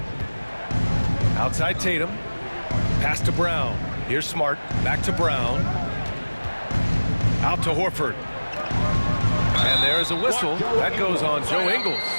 Outside Tatum. Pass to Brown. Here's Smart. Back to Brown. Out to Horford. And there's a whistle. That goes on Joe Ingles.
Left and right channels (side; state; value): both; inverted; correlation -1.00